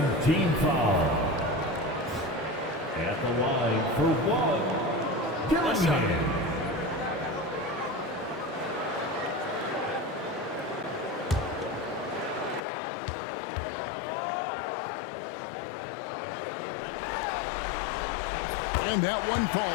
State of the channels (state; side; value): drops out; right; at 12.6 s